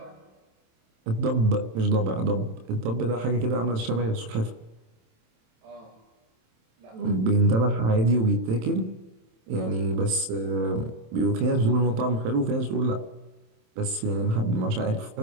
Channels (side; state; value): left; late; 27 ms